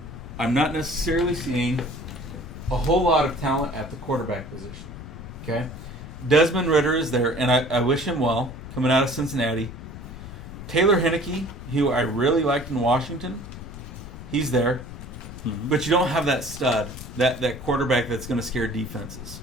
I'm not necessarily seeing a whole lot of talent at the quarterback position. Okay? Desmond Ridder is there, and I wish him well, coming out of Cincinnati. Taylor Heinicke, who I really liked in Washington, he's there. Mm-hmm. But you don't have that stud, that quarterback that's going to scare defenses,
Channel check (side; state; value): left; noise; rumble, 12 dB below the sound